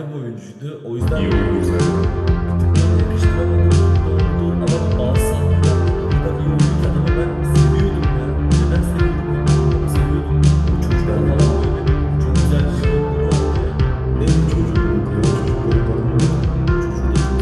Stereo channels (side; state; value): both; identical; correlation 1.00